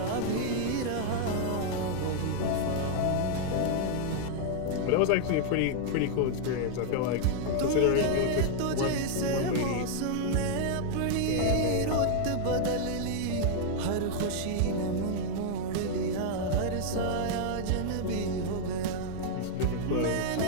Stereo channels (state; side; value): different; both; correlation -0.01